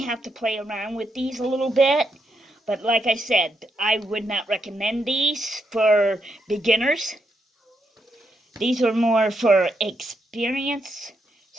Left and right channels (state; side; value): normal; both; correlation 0.80